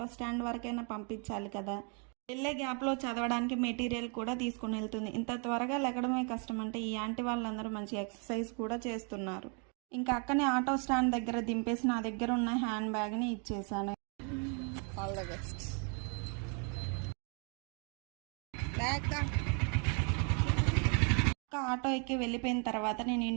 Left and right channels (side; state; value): left; quieter; 37.4 dB